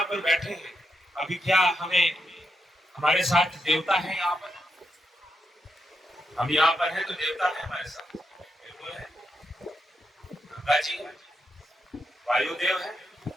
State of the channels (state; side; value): normal; both; correlation 0.83